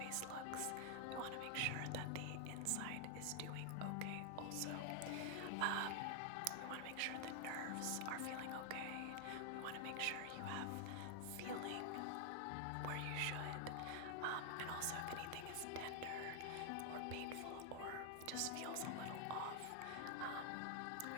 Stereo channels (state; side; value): different; both; correlation 0.00